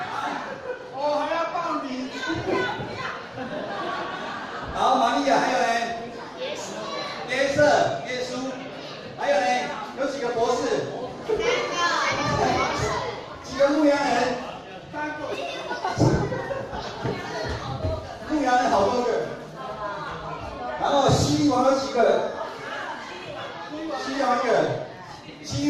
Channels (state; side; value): identical; both; correlation 1.00